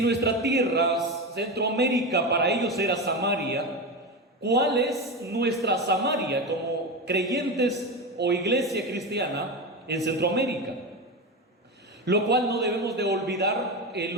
tierra, Centroamérica, para ellos era Samaria, ¿cuál es nuestra Samaria como creyentes o iglesia cristiana en Centroamérica? Lo cual no debemos de olvidar el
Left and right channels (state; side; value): normal; both; correlation 0.19